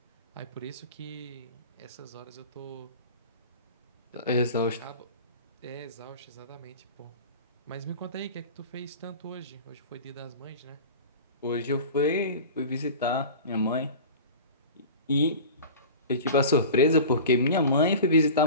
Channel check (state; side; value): inverted; both; correlation -0.36